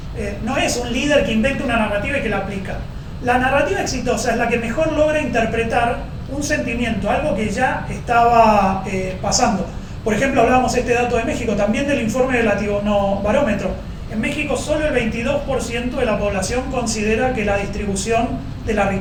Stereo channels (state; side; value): identical; both; correlation 1.00